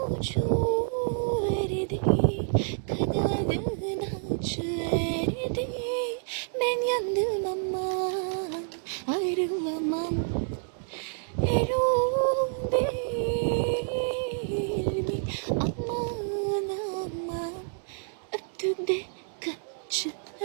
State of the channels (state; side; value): silent; left; digital silence